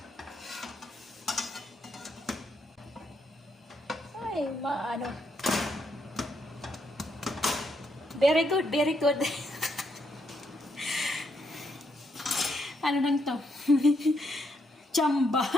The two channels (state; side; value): normal; both; correlation 0.77